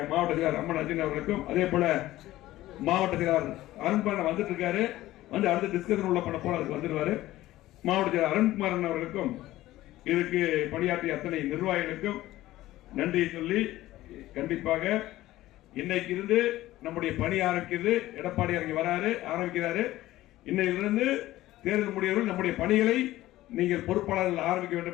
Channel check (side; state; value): right; quieter; 15.9 dB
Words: மாவட்ட செயலாளர் அம்மன் அர்ஜுன் அவர்களுக்கும், அதே போல மாவட்ட செயலாளர் அருண்குமார் வந்துட்டு இருக்காரு, வந்து அடுத்த டிஸ்கஷன் உள்ள பண்ண போல அதுக்கு வந்துடுவாரு. மாவட்ட செயலாளர் அருண்குமார் அவர்களுக்கும் இதுக்கு பணியாற்றிய அத்தனை நிர்வாகிகளுக்கும் நன்றி சொல்லி, கண்டிப்பாக இன்னைக்கு இருந்து நம்முடைய பணி ஆரம்பிக்கிறது. எடப்பாடி ஆரம்பிக்கிறாரு. இன்னையிலிருந்து தேர்தல் முடியவர்கள் நம்முடைய பணிகளை நீங்கள் பொறுப்பாளர்கள் ஆரம்பிக்க